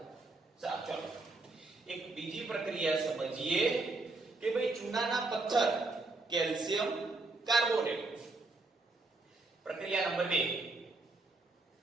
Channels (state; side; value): quieter; left; 3.3 dB